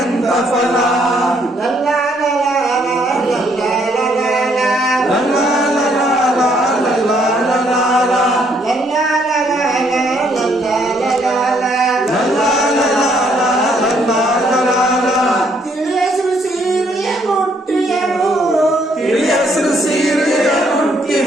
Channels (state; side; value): normal; both; correlation 0.69